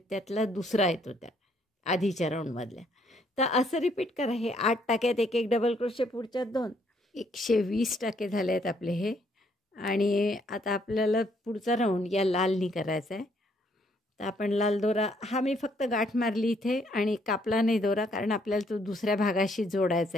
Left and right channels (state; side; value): normal; both; correlation 0.68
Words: दुसरा येतो त्या आधीच्या राऊंडमधल्या. तर असं रिपीट करा. हे 8 टाक्यात 1-1 डबल क्रोशे, पुढच्यात 2. 120 टाके झाले आहेत आपले हे. आणि आता आपल्याला पुढचा राऊंड या लालनी करायचा आहे. तर आपण लाल दोरा, हा मी फक्त गाठ मारली इथे आणि कापला नाही दोरा, कारण आपल्याला तो दुसऱ्या भागाशी जोडायचा